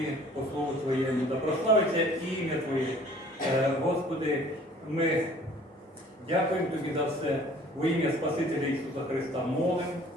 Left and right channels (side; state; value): both; normal; correlation 0.52